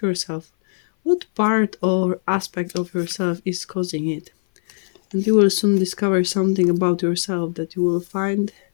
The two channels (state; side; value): silent; right; 58 dB below the other